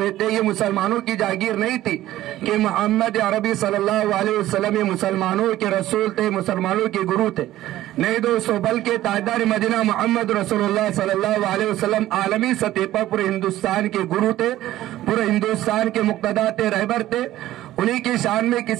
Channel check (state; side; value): quieter; left; 14.5 dB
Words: थे, ये मुसलमानों की जागीर नहीं थी कि मोहम्मद अरबी सल्लल्लाहु अलैहि वसल्लम ये मुसलमानों के रसूल थे, मुसलमानों के गुरु थे। नहीं दोस्तों, बल्कि ताजदार मदीना मोहम्मद रसूलुल्लाह सल्लल्लाहु अलैहि वसल्लम आलमी सतह पर पूरे हिंदुस्तान के गुरु थे, पूरे हिंदुस्तान के मुक्तदा थे, रहबर थे। उन्हीं की शान में